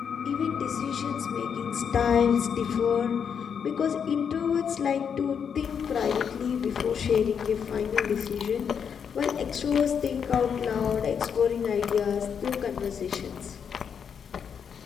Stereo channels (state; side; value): quieter; right; 7.2 dB